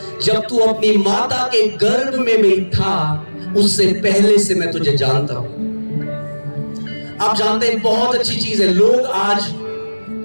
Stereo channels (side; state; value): both; inverted; correlation -1.00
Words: जब तू अपनी माता के गर्भ में भी था उससे पहले से मैं तुझे जानता हूं। आप जानते हैं बहुत अच्छी चीज है, लोग आज